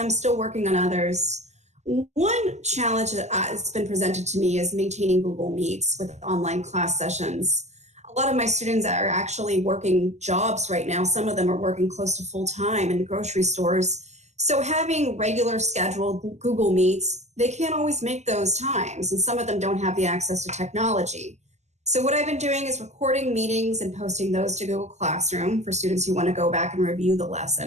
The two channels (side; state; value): left; late; 0.33 ms